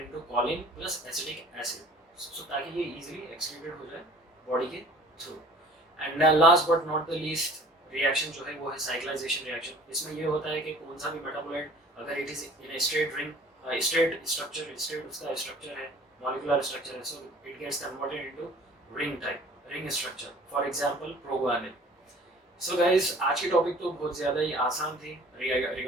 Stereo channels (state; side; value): normal; both; correlation 0.49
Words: into choline plus acetic acid. So ताकि ये इजीली एक्सक्रीटेड हो जाए बॉडी के through. And last but not the least reaction जो है वो है साइक्लाइजेशन रिएक्शन. इसमें ये होता है कि कौन सा भी मेटाबोलाइट अगर it is in a straight ring straight structure, straight उसका स्ट्रक्चर है, मॉलिक्यूलर स्ट्रक्चर है, so it gets converted into ring type, ring structure. For example proguanil. So guys आज की टॉपिक तो बहुत ज़्यादा ही आसान थी